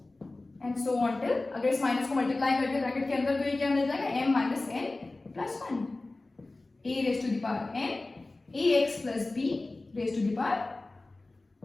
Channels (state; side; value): quieter; right; 3.1 dB